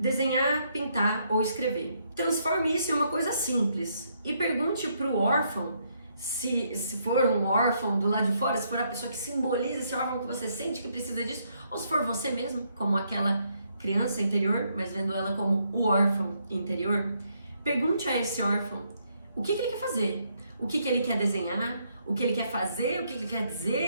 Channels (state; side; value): inverted; both; correlation -0.74